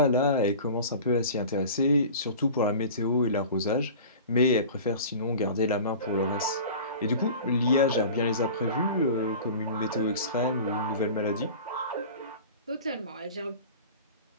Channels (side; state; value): both; inverted; correlation -0.38